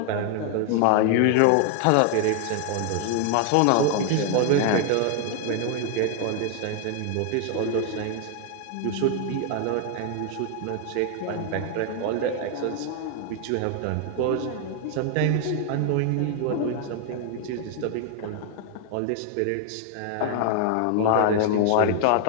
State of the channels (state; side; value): different; both; correlation 0.00